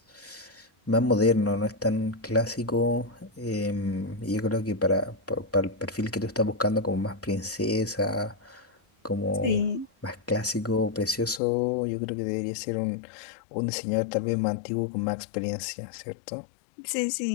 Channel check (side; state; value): right; drops out; at 11.4 s